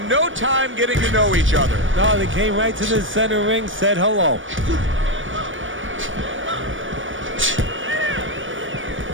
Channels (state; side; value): late; left; 0.57 ms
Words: no time getting to know each other. No, they came right to the center ring, said hello.